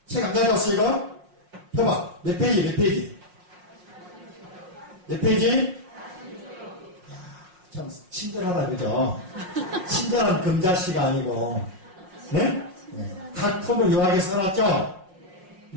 책 안 가져왔어 이거? 펴봐. 몇 페이지? 몇 페이지? 참 친절하다, 그죠? 친절한 금자씨가 아니고, 네? 각 품을 요약해 써놨죠?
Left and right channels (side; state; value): left; late; 5.5 ms